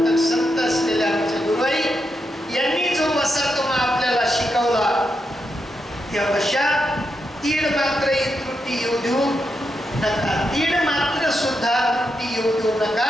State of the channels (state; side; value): normal; both; correlation 0.84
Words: संत असलेले आमचे गुरुई यांनी जो वसा तुम्हा आपल्याला शिकवला, त्या वशात तीड मात्र त्रुटी येऊ देऊ नका. तीड मात्र सुद्धा त्रुटी येऊ देऊ